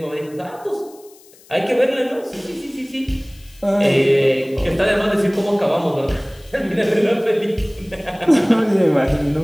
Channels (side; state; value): left; noise; hiss, 26 dB below the sound